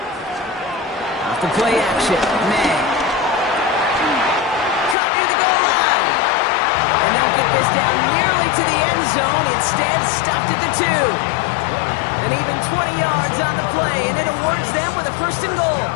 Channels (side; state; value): right; drops out; at 5.0 s